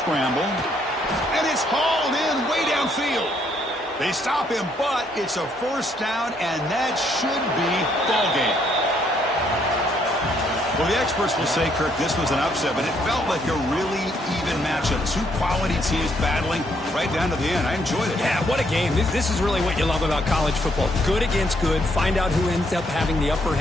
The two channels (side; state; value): both; normal; correlation 0.71